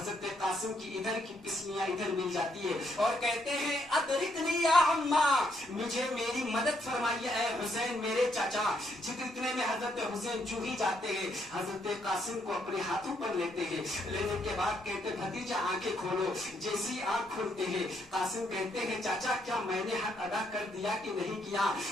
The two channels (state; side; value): normal; both; correlation 0.74